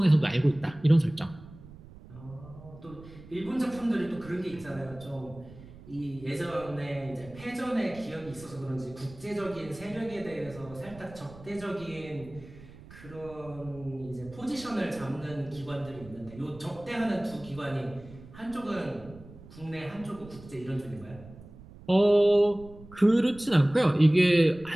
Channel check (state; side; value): noise; right; rumble, 19 dB below the sound